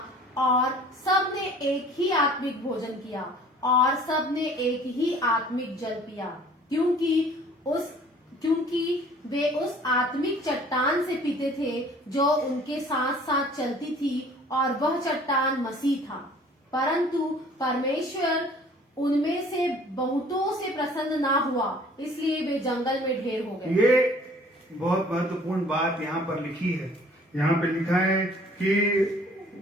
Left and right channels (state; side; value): normal; both; correlation 0.52